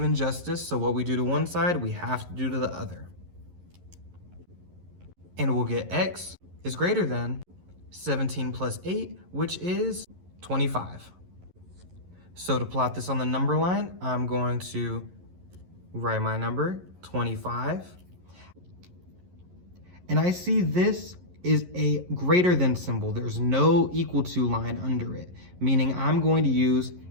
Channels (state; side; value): late; left; 11 ms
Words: justice, so what we do to one side, we have to do to the other. And we'll get x is greater than 17 plus 8, which is 25. So to plot this on the number line, I'm going to write my number, 25. And I see this is a greater than symbol. There's no equal to line under it, meaning I'm going to use